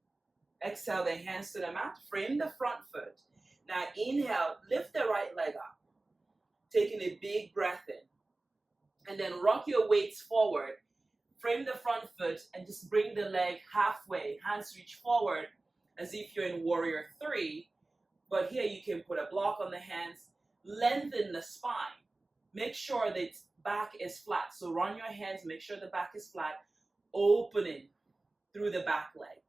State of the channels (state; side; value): quieter; left; 3.0 dB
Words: Exhale the hands to the mat. Frame the front foot. Now inhale, lift the right leg up. Taking a big breath in. And then rock your weights forward. Frame the front foot and just bring the leg halfway. Hands reach forward as if you're in warrior 3. But here you can put a block on the hands. Lengthen the spine. Make sure that back is flat. So run your hands, make sure the back is flat, opening through the back leg.